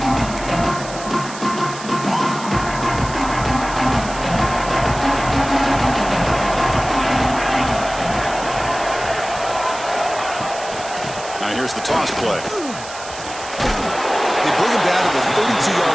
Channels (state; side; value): noise; right; hiss, 13 dB below the sound